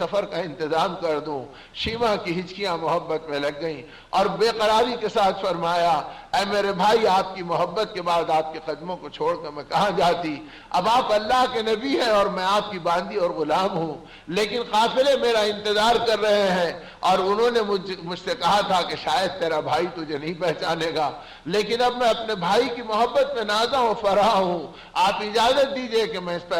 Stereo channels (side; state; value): both; identical; correlation 1.00